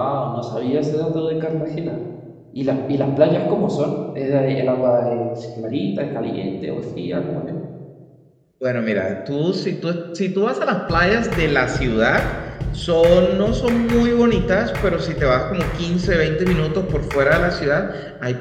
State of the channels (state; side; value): identical; both; correlation 1.00